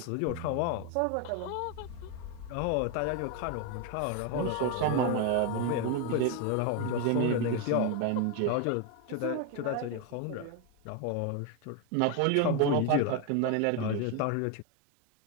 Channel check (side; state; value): both; different; correlation 0.01